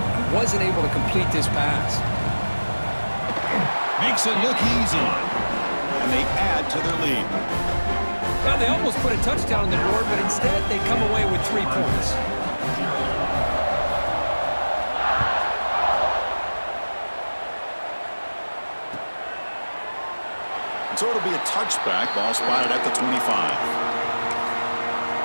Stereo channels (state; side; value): inverted; both; correlation -1.00